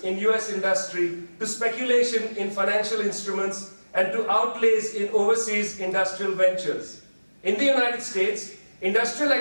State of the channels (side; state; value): both; inverted; correlation -1.00